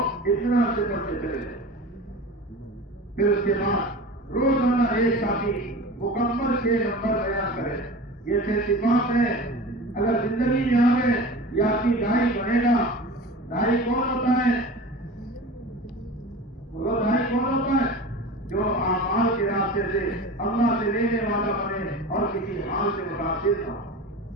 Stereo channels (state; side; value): normal; both; correlation 0.35